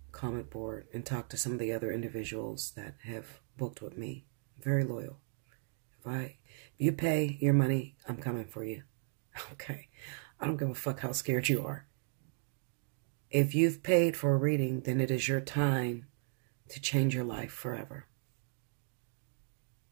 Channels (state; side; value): silent; left; 54 dB below the other